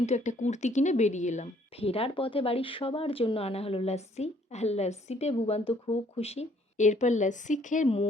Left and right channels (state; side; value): normal; both; correlation 0.63